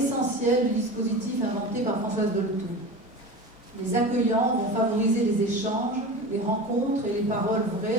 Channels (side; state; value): both; normal; correlation 0.31